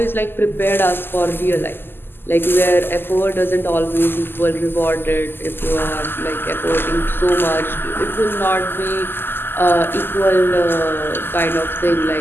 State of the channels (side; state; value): right; late; 0.10 ms